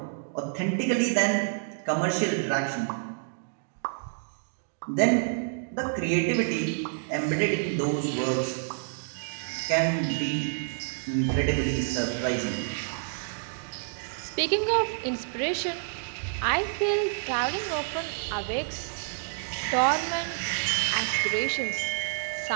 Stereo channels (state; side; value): silent; left; digital silence